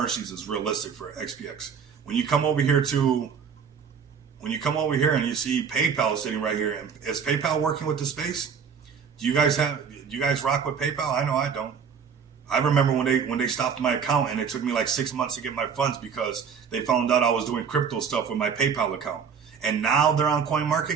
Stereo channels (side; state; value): left; quieter; 6.6 dB